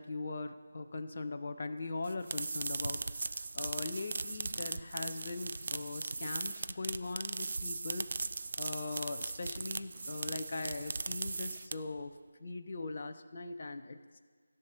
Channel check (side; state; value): both; inverted; correlation -0.90